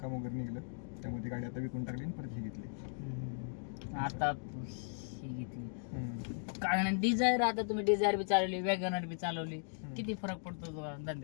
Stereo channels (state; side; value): silent; right; digital silence